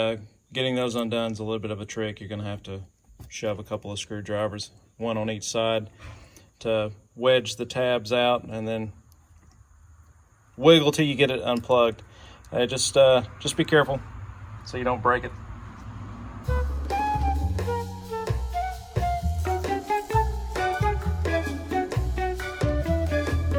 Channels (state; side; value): identical; both; correlation 1.00